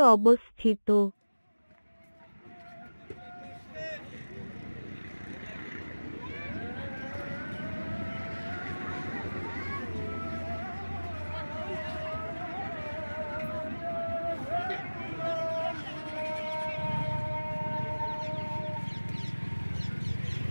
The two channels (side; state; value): both; inverted; correlation -1.00